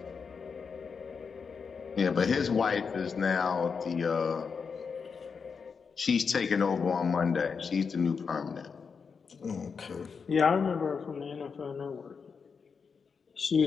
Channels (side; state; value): right; quieter; 5.7 dB